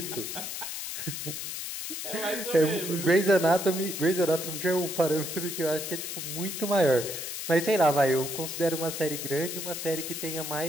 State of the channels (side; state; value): left; noise; hiss, 6 dB below the sound